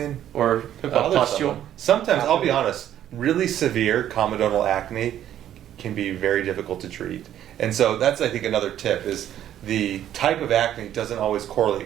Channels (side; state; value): left; quieter; 11.2 dB